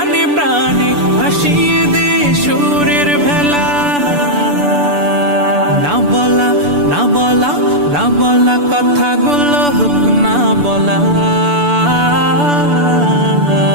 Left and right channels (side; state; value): left; late; 6.9 ms